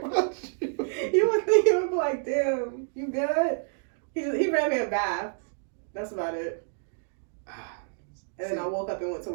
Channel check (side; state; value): left; silent; digital silence